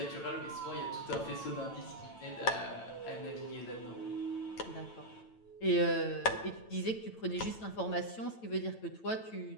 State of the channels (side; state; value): right; late; 9.0 ms